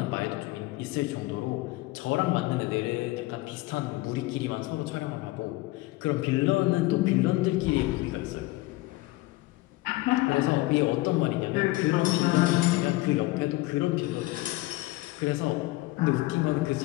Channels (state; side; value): quieter; right; 19.7 dB